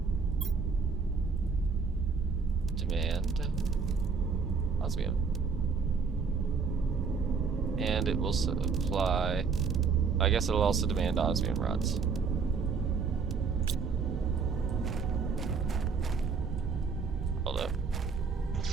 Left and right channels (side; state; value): left; quieter; 5.2 dB